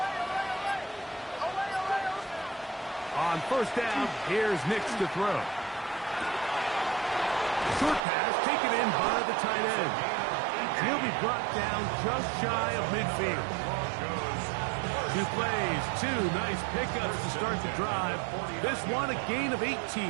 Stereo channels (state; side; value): drops out; left; at 8.0 s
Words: On first down, here's Nix to throw. Short pass taken in by the tight end. And he'll be brought down just shy of midfield. 2 plays, 2 nice pickups to start the drive. This one a gain of 18.